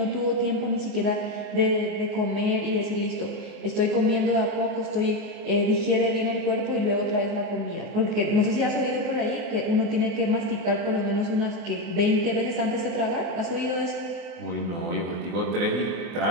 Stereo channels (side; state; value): left; late; 24 ms